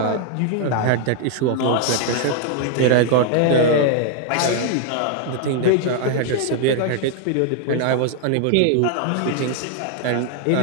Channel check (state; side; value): different; both; correlation 0.00